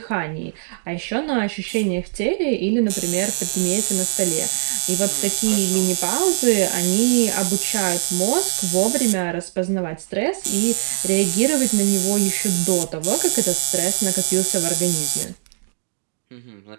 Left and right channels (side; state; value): left; silent; 65 dB below the other